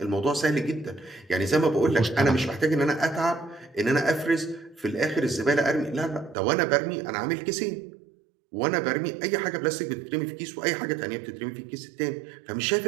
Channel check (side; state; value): left; drops out; at 6.4 s